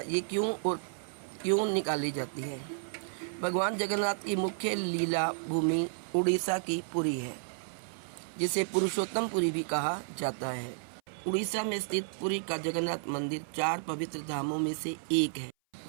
ये क्यों निकाली जाती है। भगवान जगन्नाथ की मुख्य लीला भूमि उड़ीसा की पुरी है, जिसे पुरुषोत्तमपुरी भी कहा जाता है। उड़ीसा में स्थित पुरी का जगन्नाथ मंदिर 4 पवित्र धामों में से एक है।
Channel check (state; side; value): silent; left; 56 dB below the other